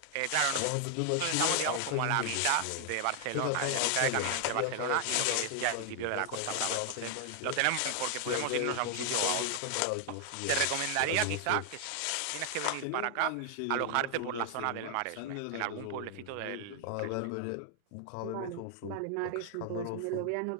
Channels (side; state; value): both; different; correlation 0.00